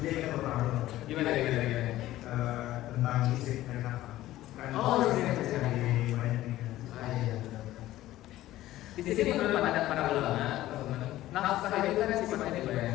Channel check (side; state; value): right; quieter; 15.1 dB